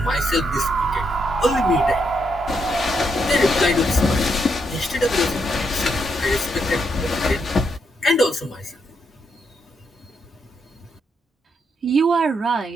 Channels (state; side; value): normal; both; correlation 0.78